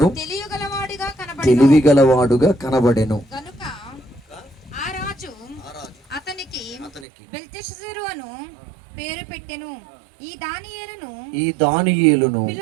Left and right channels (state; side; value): drops out; left; at 7.1 s